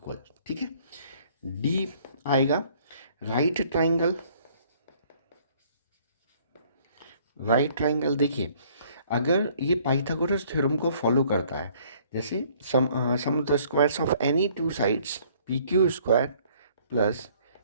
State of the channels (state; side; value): inverted; both; correlation -0.59